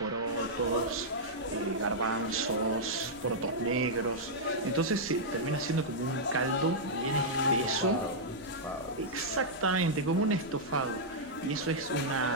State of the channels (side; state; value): right; noise; rumble, 26 dB below the sound